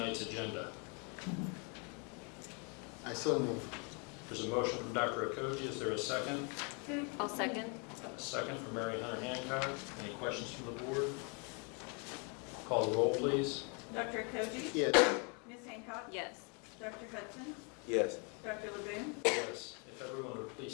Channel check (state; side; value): quieter; right; 35.1 dB